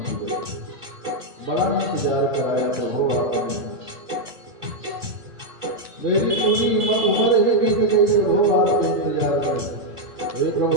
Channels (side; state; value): left; late; 1.5 ms